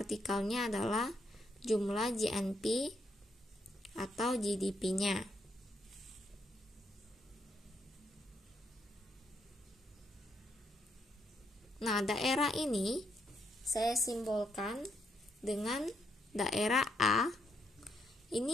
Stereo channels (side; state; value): both; normal; correlation 0.76